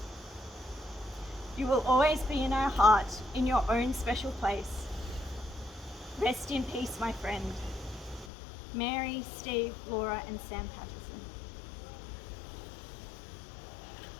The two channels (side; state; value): right; drops out; at 8.3 s